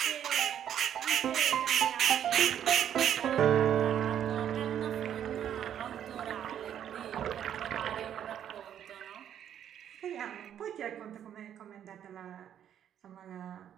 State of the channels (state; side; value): quieter; left; 9.8 dB